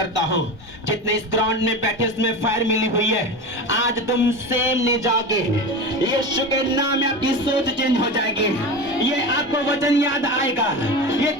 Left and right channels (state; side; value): normal; both; correlation 0.26